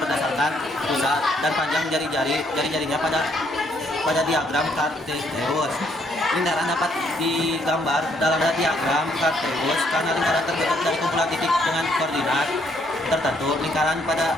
berdasarkan pusat dan panjang jari-jarinya pada diagram Cartesius. Lingkaran dapat digambar dalam diagram Cartesius karena lingkaran terbentuk dari kumpulan titik dengan koordinat tertentu. Lingkaran pada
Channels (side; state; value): both; normal; correlation 0.69